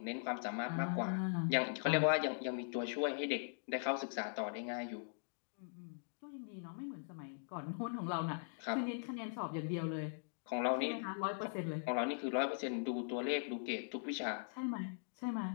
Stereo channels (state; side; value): silent; right; digital silence